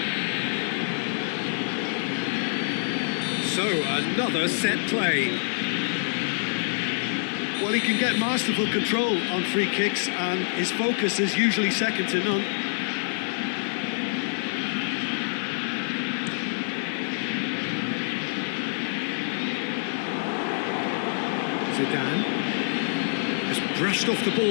So, another set play. Well, he can get masterful control on free kicks, and his focus is usually second to none. Zidane. Just brushed off the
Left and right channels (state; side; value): silent; right; digital silence